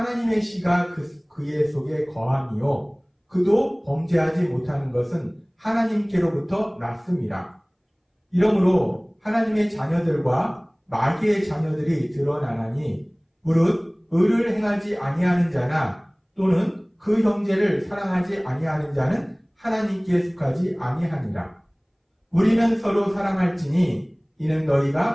씨가 그의 속에 거함이요 그도 범죄하지 못하는 것은 하나님께로부터 났습니다. 이러므로 하나님의 자녀들과 마귀의 자녀들이 드러나나니 무릇 의를 행하지 아니하는 자나 또는 그 형제를 사랑하지 아니하는 자는 하나님께 속하지 아니하니라. 우리는 서로 사랑할지니 이는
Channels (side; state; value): both; identical; correlation 1.00